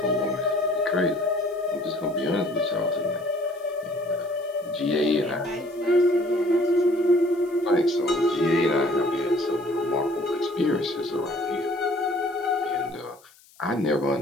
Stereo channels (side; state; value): left; noise; hiss, 27 dB below the sound